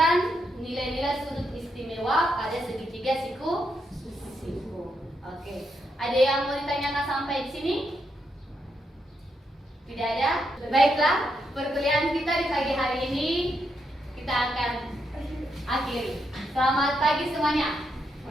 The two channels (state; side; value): normal; both; correlation 0.81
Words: nilai-nilai sudut istimewa pada segitiga siku. Oke, ada yang mau ditanyakan sampai di sini? Tidak ada? Baiklah, perkuliahan kita di pagi hari ini kita akan akhiri. Selamat pagi semuanya.